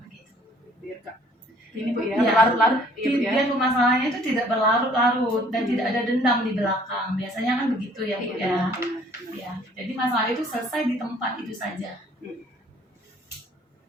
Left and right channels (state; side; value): normal; both; correlation 0.57